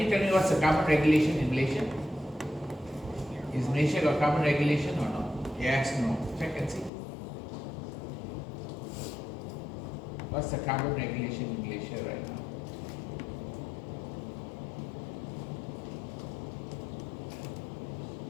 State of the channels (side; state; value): right; drops out; at 6.9 s